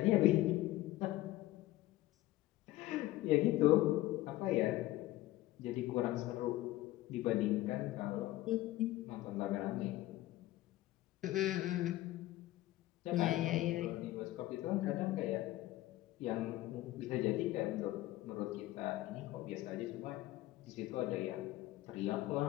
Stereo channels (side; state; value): right; quieter; 16.4 dB